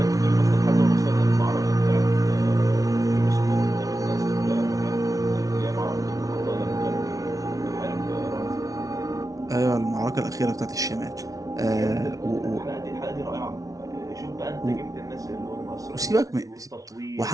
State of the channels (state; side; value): late; left; 0.17 ms